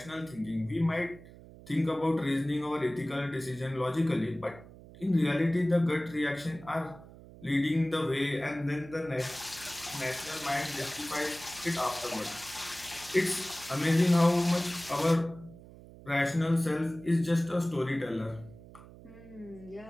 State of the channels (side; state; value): right; noise; hum, 19 dB below the sound